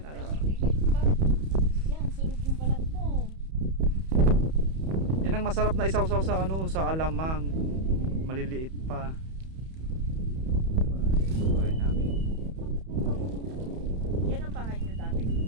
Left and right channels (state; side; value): late; left; 31 ms